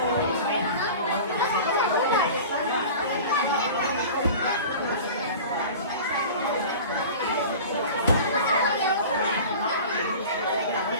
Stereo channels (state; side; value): inverted; both; correlation -0.37